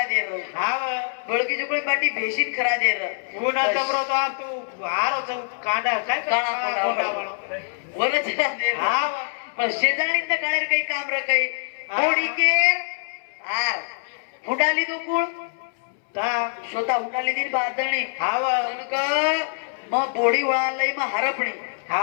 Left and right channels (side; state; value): right; silent; 62 dB below the other